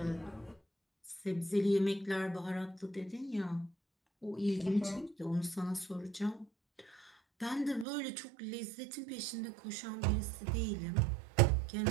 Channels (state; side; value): drops out; left; at 7.9 s